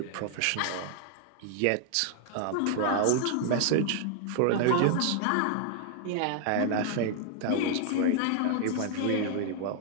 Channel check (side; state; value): both; different; correlation 0.00